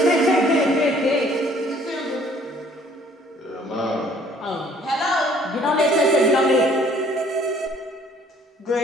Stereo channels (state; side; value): normal; both; correlation 0.59